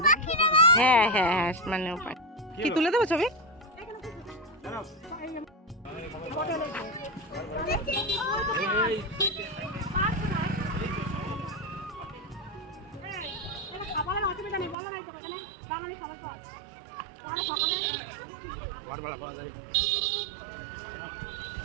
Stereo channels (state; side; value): drops out; left; at 14.8 s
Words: হ্যাঁ হ্যাঁ হ্যাঁ, মানে কি তুলে দেবো ছবি?